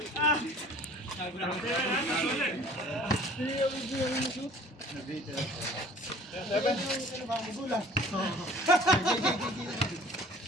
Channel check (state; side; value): normal; both; correlation 0.49